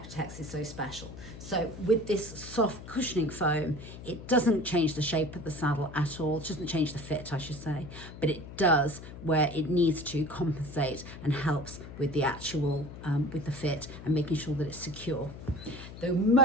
is so special. So with this soft cushioning foam, it doesn't change the shape of the saddle at all. It doesn't change the fit, I should say, but it does where it needs to compensate and helps with the actual, with the fit and making sure that it's secure. The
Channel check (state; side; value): noise; left; hum, 13 dB below the sound